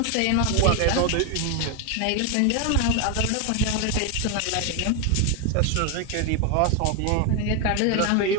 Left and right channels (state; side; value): different; both; correlation 0.01